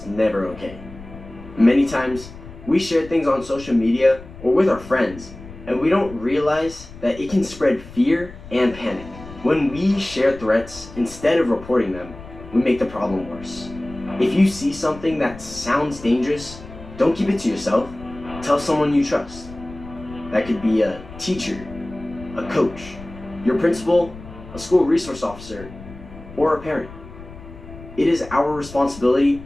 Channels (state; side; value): noise; left; rumble, 16 dB below the sound